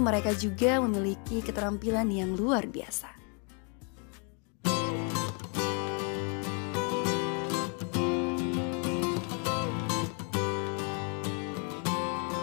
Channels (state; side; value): quieter; right; 37.0 dB